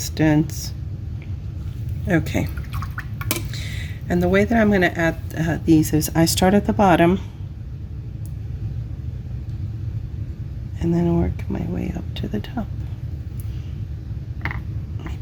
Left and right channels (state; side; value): identical; both; correlation 1.00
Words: Okay. And the way that I'm going to add these is I start at the bottom and then work my way up to the top.